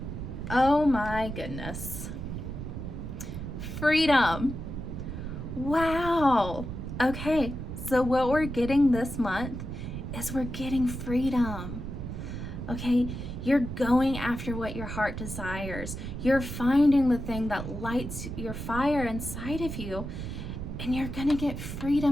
Oh my goodness. Freedom. Wow. Okay, so what we're getting this month is we're getting freedom. Okay, you're going after what your heart desires. You're finding the thing that lights your fire inside of you, and you're gonna get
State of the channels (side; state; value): right; noise; rumble, 6 dB below the sound